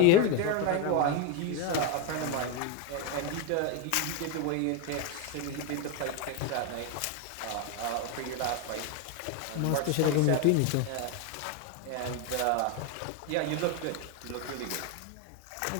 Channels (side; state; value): both; different; correlation 0.02